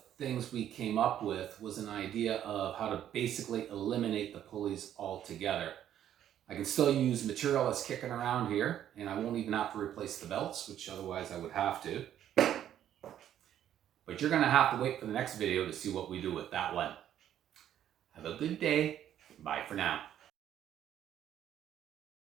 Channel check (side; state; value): left; quieter; 10.8 dB